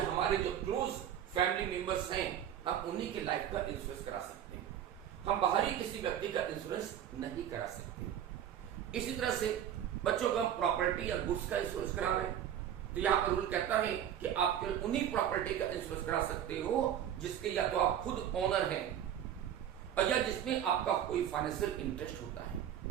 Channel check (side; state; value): left; quieter; 10.2 dB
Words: हमारे जो क्लोज फैमिली मेंबर्स हैं हम उन्हीं की लाइफ का इंश्योरेंस करा सकते हैं। हम बाहरी किसी व्यक्ति का इंश्योरेंस नहीं करा सकते। इसी तरह से बच्चों को हम प्रॉपर्टी या गुड्स का इंश्योरेंस करा रहे हैं तो यहां पर रूल कहता है कि आप केवल उन्हीं प्रॉपर्टी का इंश्योरेंस करा सकते हो जिसके या तो आप खुद ओनर हैं और या जिसमें आपका कोई फाइनेंशियल इंटरेस्ट होता है,